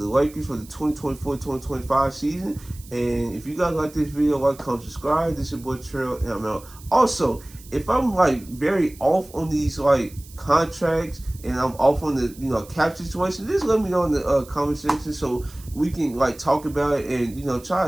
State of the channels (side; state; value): right; noise; hiss, 21 dB below the sound